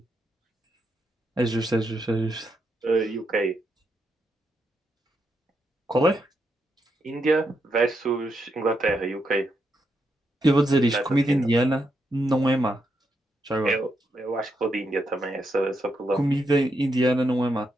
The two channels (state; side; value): normal; both; correlation 0.81